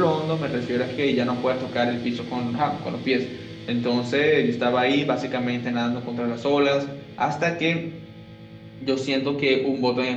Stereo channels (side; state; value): both; identical; correlation 1.00